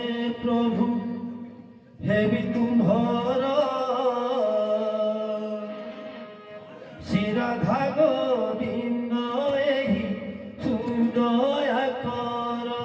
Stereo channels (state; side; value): identical; both; correlation 1.00